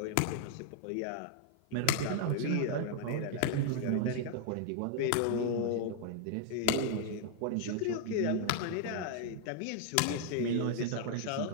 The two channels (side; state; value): both; different; correlation 0.00